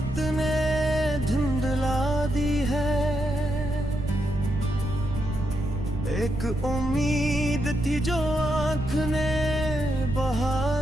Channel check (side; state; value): right; noise; rumble, 6 dB below the sound